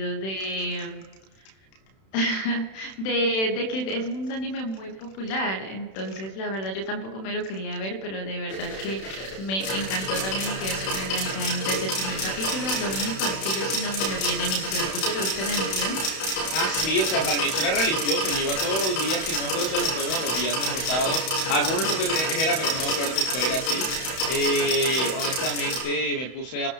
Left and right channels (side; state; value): right; late; 31 ms